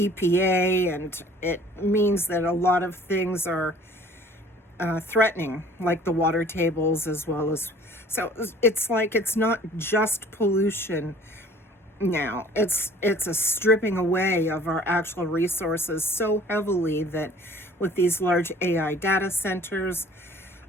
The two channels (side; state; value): both; normal; correlation 0.51